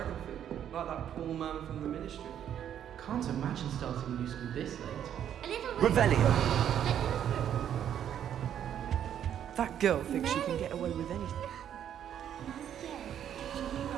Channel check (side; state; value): left; quieter; 9.8 dB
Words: food, like that poor man from the ministry. Can't imagine starting new school this late. Revelio. That girl thinks she can get away with anything.